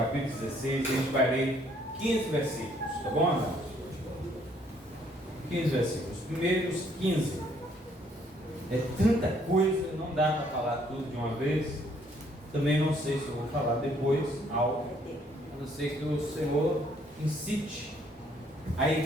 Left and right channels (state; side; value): normal; both; correlation 0.65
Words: 16, a gente vai ler 15 versículos, tá bom, amados? 15 versículos, os primeiros 15. É tanta coisa, não dá para falar tudo de uma vez. Também não sei se eu vou falar depois algo, a não ser que o Senhor incite a